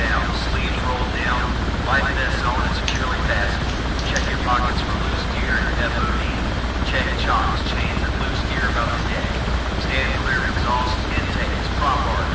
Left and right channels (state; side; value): identical; both; correlation 1.00